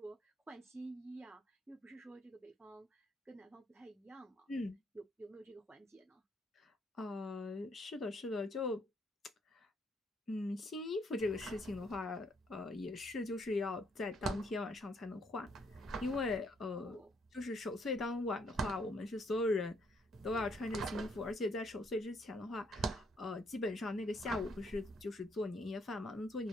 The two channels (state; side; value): normal; both; correlation 0.70